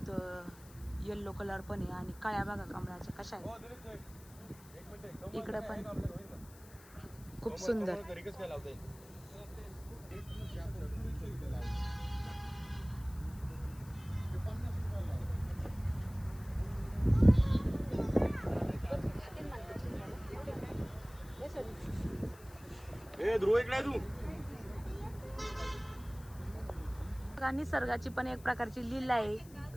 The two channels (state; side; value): noise; left; hiss, 22 dB below the sound